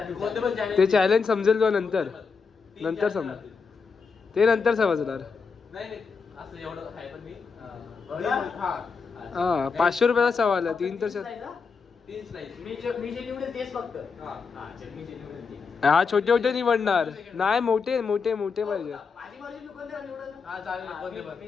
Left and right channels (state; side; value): quieter; right; 5.2 dB